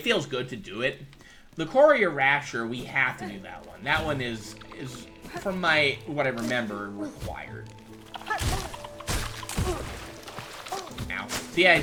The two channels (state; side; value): identical; both; correlation 1.00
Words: feels good to do it. The Courier Rasher, we have to do that one. That one is from what I remember, required. Now, so yeah,